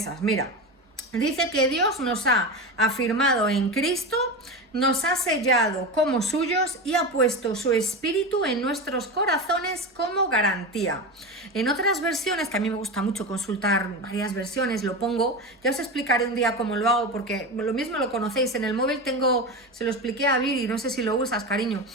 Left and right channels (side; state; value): both; normal; correlation 0.22